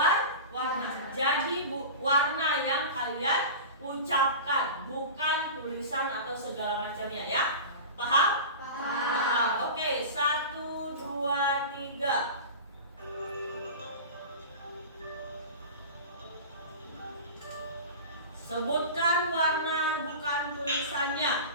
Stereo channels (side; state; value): both; inverted; correlation -0.31